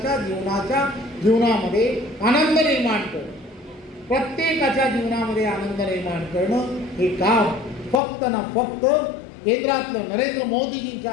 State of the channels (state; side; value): drops out; right; at 8.0 s